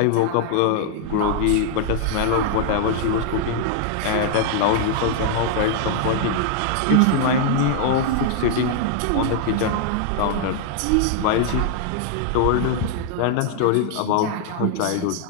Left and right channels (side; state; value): both; different; correlation 0.00